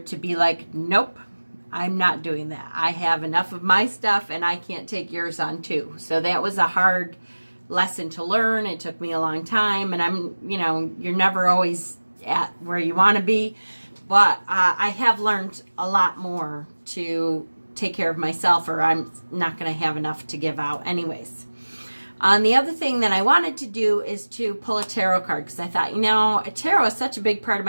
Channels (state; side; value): inverted; both; correlation -1.00